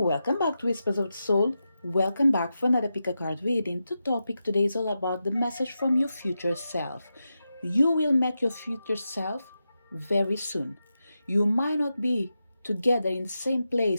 back to Whispers of the Soul. Welcome back for another pick a card reading. The topic today is all about the message from your future self. You will meet your future self very soon. You might not be together in the same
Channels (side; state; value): both; inverted; correlation -0.89